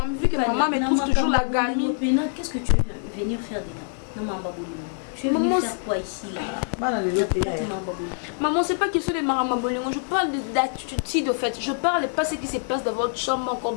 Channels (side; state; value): right; silent; digital silence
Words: Vu que maman me trouve toujours la gamine. Qu'est-ce que tu veux venir faire dedans? Non, maman. Tu veux venir faire quoi ici là? Maman, c'est pas question de maramabolingo. Je parle d'attitude de fait. Je parle pas ce qui se passe dans votre chambre, encore